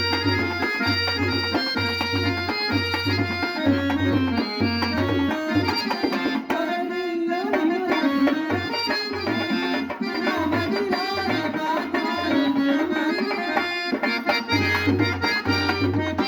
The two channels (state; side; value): identical; both; correlation 1.00